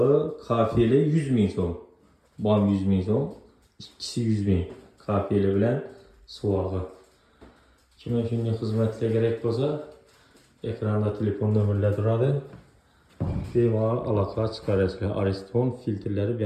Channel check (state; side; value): identical; both; correlation 1.00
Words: kafeli 100 ming so'm. Bam 100 ming so'm, ikkisi 100 ming. Kafeli bilan suvag'i. Kimga shunday xizmatlar kerak bo'lsa, ekranda telefon nomerlari turadi. Bemalol aloqa chiqarasizlar. Ariston filtrlari